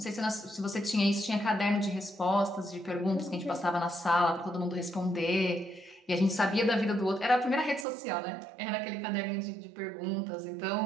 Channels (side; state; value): left; drops out; at 7.9 s